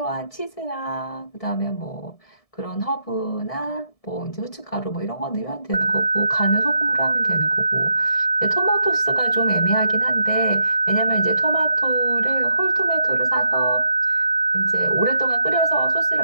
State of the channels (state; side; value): late; right; 1.7 ms